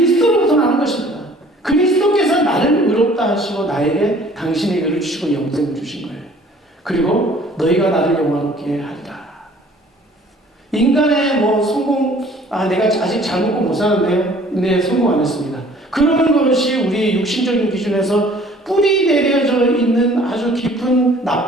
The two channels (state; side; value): normal; both; correlation 0.53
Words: 나는 것입니다. 그리스도께서 나를 의롭다 하시고 나에게 당신의 의를 주시고 영생을 주신 거예요. 그리고 너희가 나를 영화롭게 하리라. 인간의 성공, 내가 아직 잘 먹고 못 사는데요. 네, 성공 안 했습니다. 그러는 것이 우리 육신적인 기준에서 뿌리 내려져 있는 아주 깊은